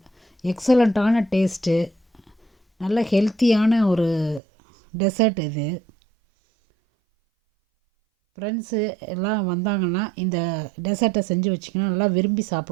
எக்ஸலண்ட்டான டேஸ்ட்டு, நல்ல ஹெல்த்தியான ஒரு டெசர்ட் இது. ஃப்ரெண்ட்ஸு எல்லாம் வந்தாங்கன்னா இந்த டெசர்ட்டை செஞ்சு வச்சிங்கன்னா நல்லா விரும்பி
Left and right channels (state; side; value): drops out; left; at 4.4 s